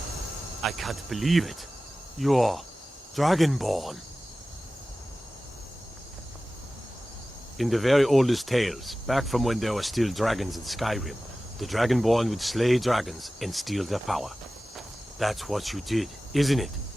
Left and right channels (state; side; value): normal; both; correlation 0.96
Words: I can't believe it. You're Dragonborn. In the very oldest tales, back from when there were still dragons in Skyrim, the Dragonborn would slay dragons and steal their power. That's what you did, isn't it?